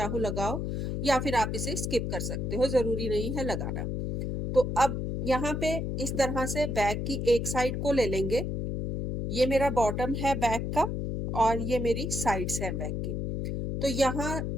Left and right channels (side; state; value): left; noise; hum, 2 dB below the sound